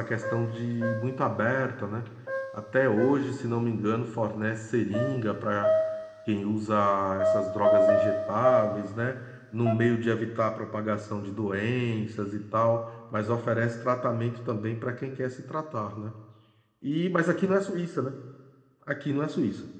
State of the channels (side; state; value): both; identical; correlation 1.00